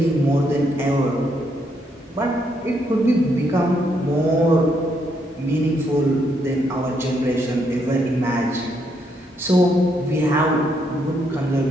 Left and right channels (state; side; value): normal; both; correlation 0.75